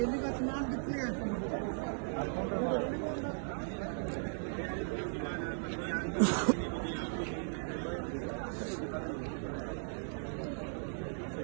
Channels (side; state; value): left; silent; 53 dB below the other